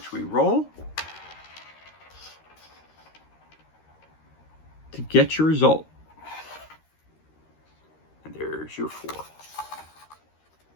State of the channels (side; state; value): right; late; 13 ms